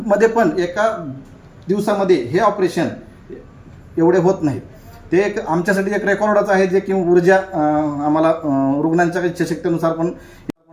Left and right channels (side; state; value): both; identical; correlation 1.00